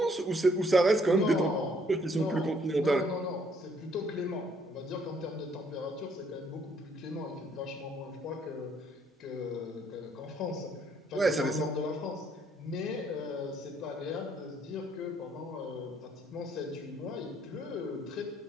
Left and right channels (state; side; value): normal; both; correlation 0.67